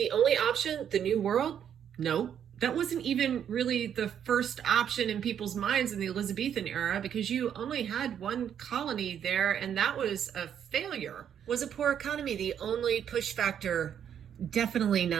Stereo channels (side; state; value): left; quieter; 8.9 dB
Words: only option the New World? No. That wasn't even really the first option in people's minds in the Elizabethan era, because you only had one colony there, and that was a failure. Was a poor economy the only push factor? Definitely